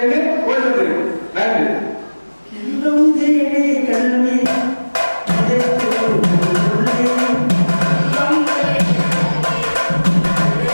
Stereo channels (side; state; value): both; inverted; correlation -1.00